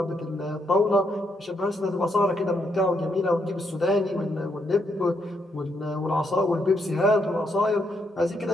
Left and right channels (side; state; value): both; normal; correlation 0.77